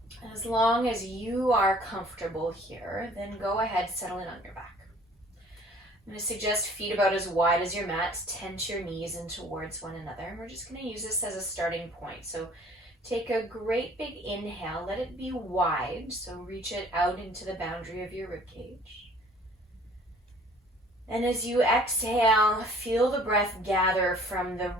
as long as you are comfortable here, then go ahead, settle in on your back. I'm going to suggest feet about as wide as your mat. Tense your knees in towards one another. And we're just going to use this as a starting point. So take a great big inhale. Let it be wide. So reach it out into the boundary of your ribcage. And as you exhale, feel the breath gather from the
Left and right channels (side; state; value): both; normal; correlation 0.53